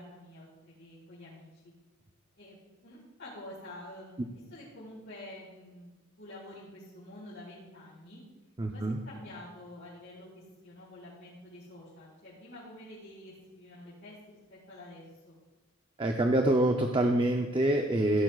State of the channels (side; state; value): both; normal; correlation 0.66